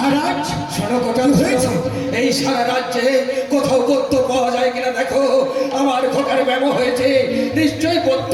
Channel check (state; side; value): identical; both; correlation 1.00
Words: শোনো কোটাল হয়েছে এই সারা রাজ্যে কোথাও বদ্ধ পাওয়া যায় কিনা দেখো। আমার খোকার ব্যামো হয়েছে, নিশ্চয়ই বদ্ধ